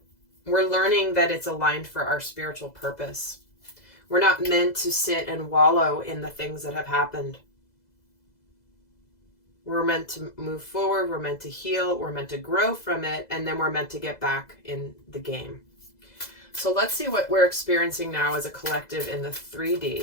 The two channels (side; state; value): right; late; 2.0 ms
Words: we're learning that it's aligned for our spiritual purpose. We're not meant to sit and wallow in the things that have happened. We're meant to move forward, we're meant to heal, we're meant to grow from it, and then we're meant to get back in the game. So let's see what we're experiencing now as a collective in the